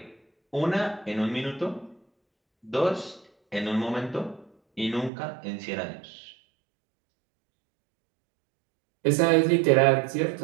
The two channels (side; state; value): left; drops out; at 5.1 s